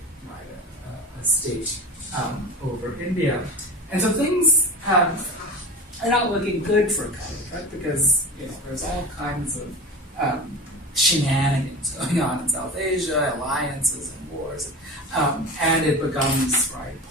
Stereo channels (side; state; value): both; normal; correlation 0.30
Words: right, a state over India. And so things are not looking good for Calicut because there's all kinds of shenanigans going on in South Asia, alliances and wars, and it becomes